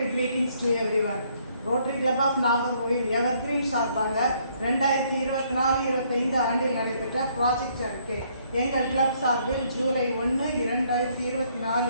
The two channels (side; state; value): both; inverted; correlation -0.67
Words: greetings to everyone. Rotary club of Nagercoil evergreen சார்பாக 2024-25 ஆண்டில் நடைபெற்ற project அறிக்கை. எங்கள் club சார்பில் ஜூலை 1,